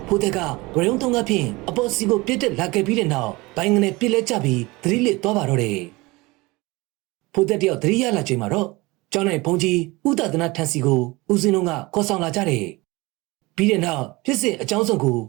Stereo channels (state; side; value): quieter; left; 22.7 dB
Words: ဖိုးသက်ကဝရုံတုံးကဖြင့်အပေါ်စီကိုပြစ်တက်လာခဲ့ပြီးတဲ့နောက်ဘိုင်းကနေပြစ်လဲကျပြီးသတိလစ်သွားပါတော့တယ်။ဖိုးသက်တယောက်သတိရလာချိန်မှာတော့ကျောင်း၌ဘုံကြီးဥဒသနာထန်စီကိုဦးစင်းတို့ကခေါ်ဆောင်လာကြတယ်။ပြီးတဲ့နောက်ဖြစ်စဉ်အကြောင်းစုံကို